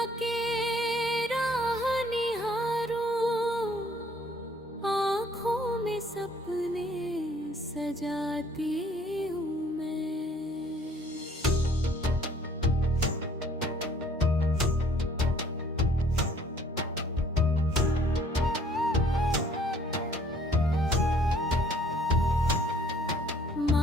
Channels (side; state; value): both; normal; correlation 0.59